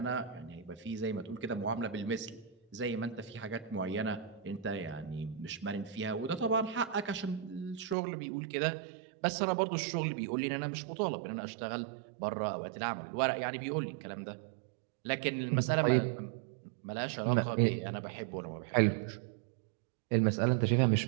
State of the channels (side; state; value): left; drops out; at 8.0 s